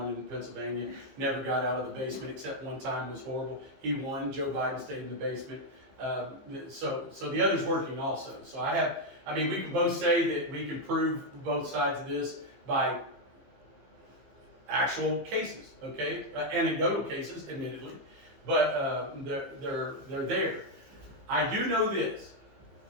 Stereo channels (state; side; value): late; left; 15 ms